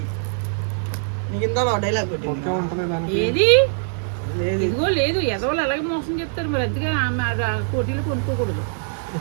నీకు ఇంత డైలాగ్ ఏది ఇదిగో లేదు, ఎదవలు అలాగే మోసం చెప్తారు. మరి అందుకే కోటీలు కొనుక్కోకూడదు,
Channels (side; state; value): left; silent; digital silence